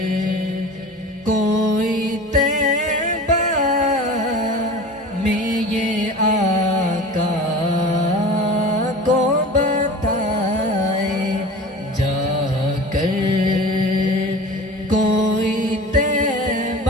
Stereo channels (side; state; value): both; normal; correlation 0.37